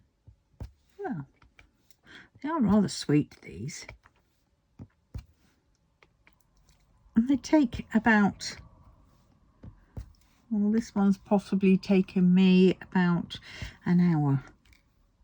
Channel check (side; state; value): both; identical; correlation 1.00